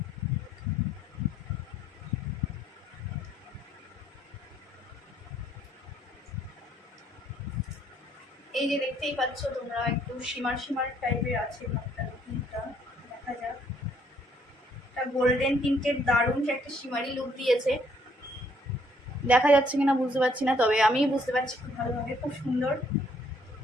এই যে দেখতেই পাচ্ছ তোমরা, একটু শিমার টাইপের আছে ভাবটা, দেখা যাক। একটা গোল্ডেন টিন্টের দারুণ একটা শিমারি লুক দিয়েছে, দেখা যাচ্ছে কিনা বুঝতে পারছি না, তবে আমি বুঝতে পারছি খুব ভালোভাবে, খুব সুন্দর,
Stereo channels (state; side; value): normal; both; correlation 0.66